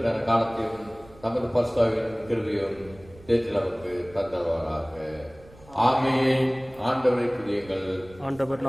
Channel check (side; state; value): right; noise; rumble, 23 dB below the sound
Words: காலத்தையும் தமது பரிசுத்தாவின் கிருபையும் தேற்றில் நமக்கு தந்தவராக. ஆமென். ஆண்டவரை துதியுங்கள். ஆண்டவர்